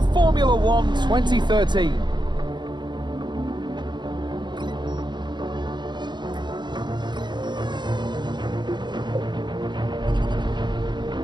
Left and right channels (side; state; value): left; late; 0.22 ms